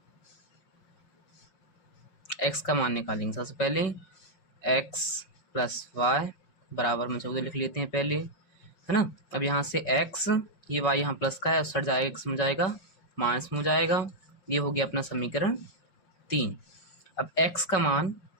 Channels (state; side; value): late; right; 5.3 ms